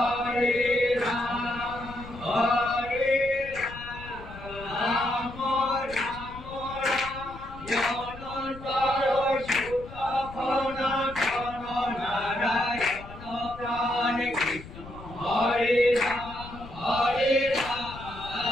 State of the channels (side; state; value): left; noise; rumble, 15 dB below the sound